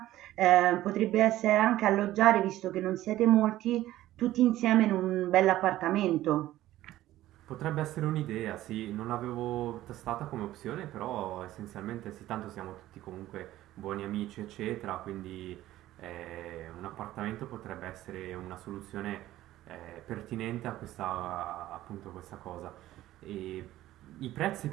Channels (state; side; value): quieter; left; 14.8 dB